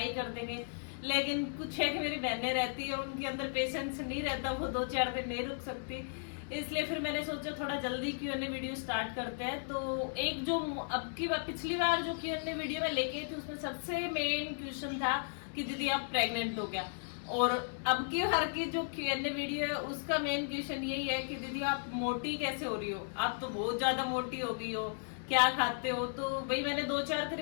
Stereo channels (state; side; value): silent; right; digital silence